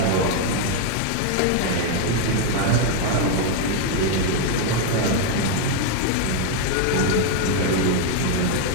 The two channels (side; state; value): both; different; correlation 0.01